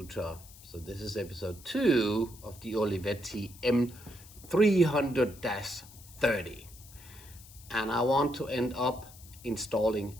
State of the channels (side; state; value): left; noise; hiss, 20 dB below the sound